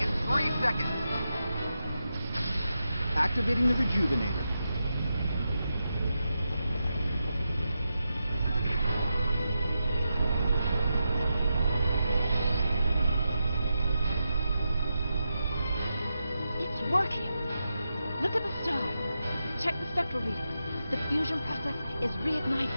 in 3 seconds. Activating the rejuvenator. It's working. Look at the star. Check the spectral readings. The fusion process is reigniting,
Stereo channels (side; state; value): both; inverted; correlation -0.88